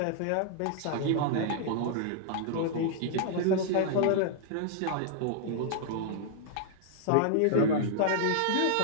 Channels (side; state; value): both; different; correlation -0.01